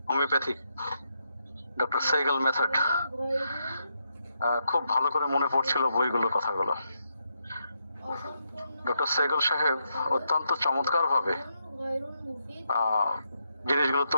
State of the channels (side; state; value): both; inverted; correlation -0.81